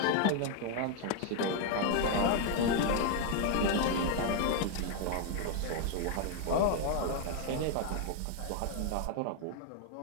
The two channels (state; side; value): different; both; correlation 0.00